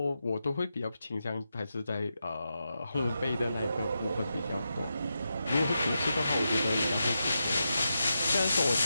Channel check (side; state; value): both; inverted; correlation -0.87